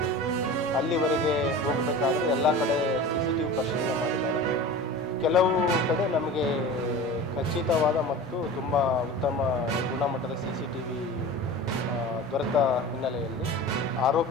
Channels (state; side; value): normal; both; correlation 0.34